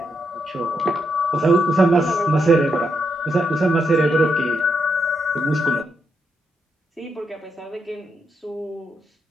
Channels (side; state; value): both; normal; correlation 0.81